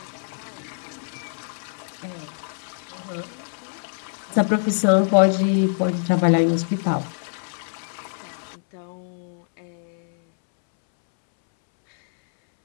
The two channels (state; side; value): silent; right; 62 dB below the other